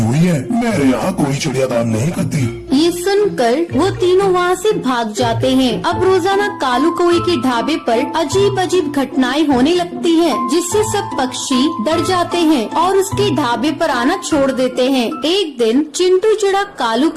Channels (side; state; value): both; identical; correlation 1.00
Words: हुई है। मेरे यहाँ कोई चिड़िया काम नहीं करती। ये सुनकर वो तीनों वहाँ से भाग जाते हैं। अब रोजाना कालू कौवे के ढाबे पर अजीब अजीब घटनाएं होने लगती हैं, जिससे सब पक्षी डर जाते हैं और उसके ढाबे पर आना छोड़ देते हैं। एक दिन चिंटू चिड़ा कालू